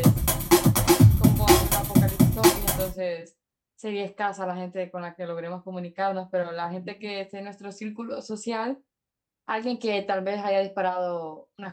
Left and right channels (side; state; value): both; identical; correlation 1.00